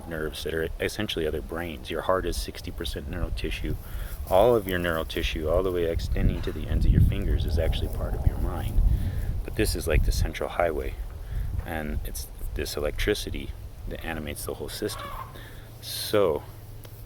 nerves that are essentially other brains. Your heart is 60% neural tissue. All of your neural tissue, all the way extending to the ends of your fingers, is actually part of your mind. But this is like the central highway, and it's this electricity that animates the whole system. So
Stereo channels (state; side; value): identical; both; correlation 1.00